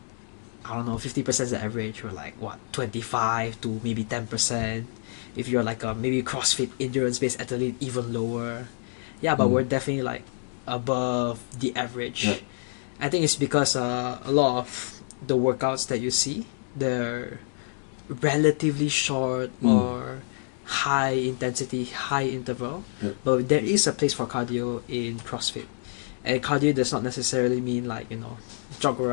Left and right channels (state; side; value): silent; right; 60 dB below the other